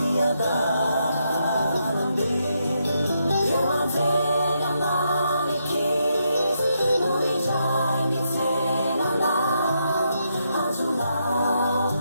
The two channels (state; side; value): inverted; both; correlation -0.80